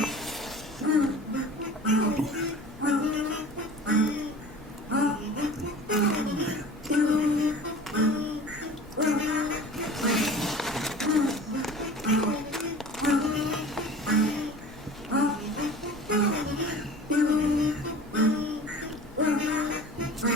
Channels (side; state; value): both; normal; correlation 0.41